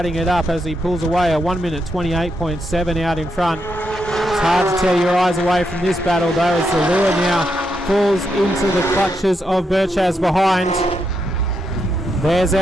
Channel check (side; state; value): both; normal; correlation 0.82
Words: it up as he pulls away. A 1 minute 28.7 out in front. It's hard to tear your eyes away from this battle though, as Zalua now falls into the clutches of Birchaz behind. There's